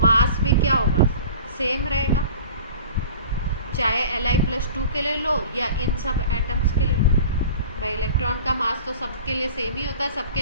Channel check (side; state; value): both; inverted; correlation -0.41